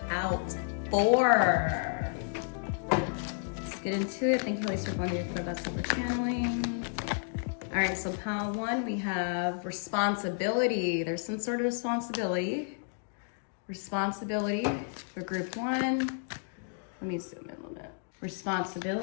out for? Let's get into it. Thank you, Holy Spirit, for the best for channeling. All right, so pile 1, we have responsibility. There's some sort of responsibility. Responsibility for group 1. Let me zoom in a little bit.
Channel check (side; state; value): right; silent; digital silence